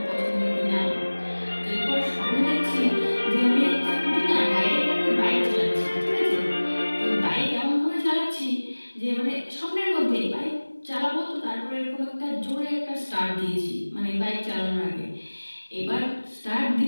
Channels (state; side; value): inverted; both; correlation -1.00